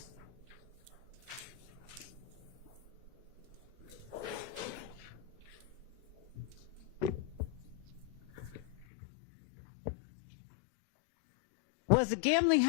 Was the gambling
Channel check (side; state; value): right; drops out; at 8.8 s